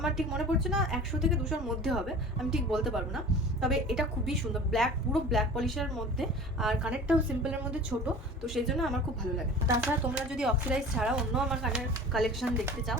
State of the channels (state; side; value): normal; both; correlation 0.39